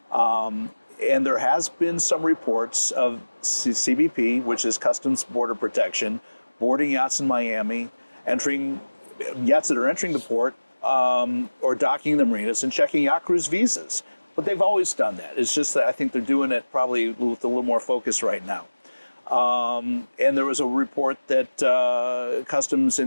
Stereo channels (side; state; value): both; inverted; correlation -1.00